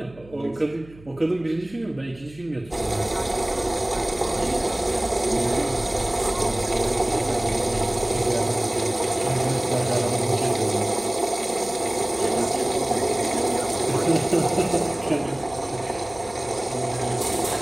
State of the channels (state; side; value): noise; right; hum, 22 dB below the sound